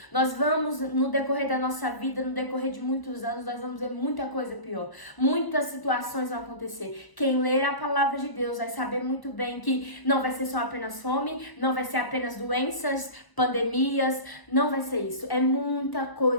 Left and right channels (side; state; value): right; late; 1.0 ms